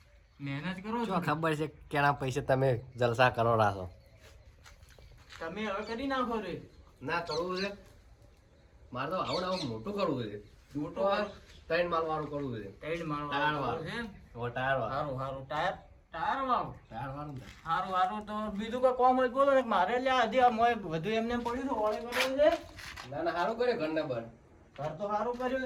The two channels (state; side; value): identical; both; correlation 1.00